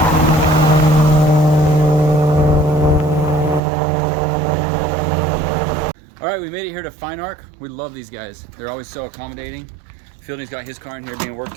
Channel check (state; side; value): drops out; left; at 3.6 s